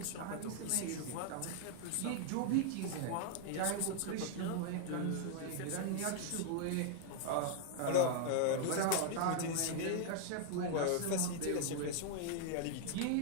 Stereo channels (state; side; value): different; both; correlation 0.00